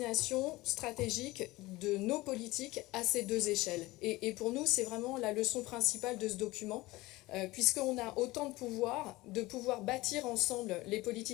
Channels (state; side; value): quieter; right; 19.8 dB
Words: stratégique de nos politiques à ces deux échelles. Et pour nous, c'est vraiment la leçon principale de ce document, puisqu'on a autant de pouvoir bâtir ensemble les